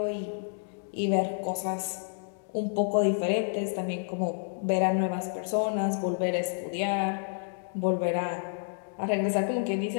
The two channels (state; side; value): silent; right; digital silence